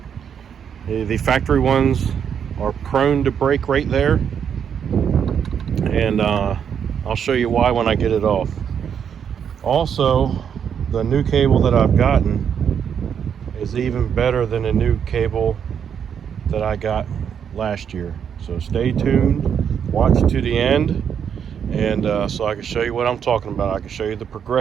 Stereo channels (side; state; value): left; quieter; 7.9 dB